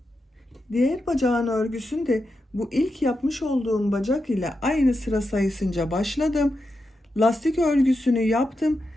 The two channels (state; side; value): normal; both; correlation 0.87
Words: Diğer bacağın örgüsünde bu ilk yapmış olduğum bacak ile aynı sıra sayısınca başladım. Lastik örgüsünü yaptım.